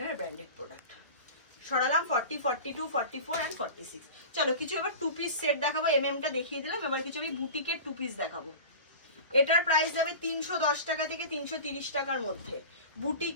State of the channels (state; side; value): inverted; both; correlation -0.35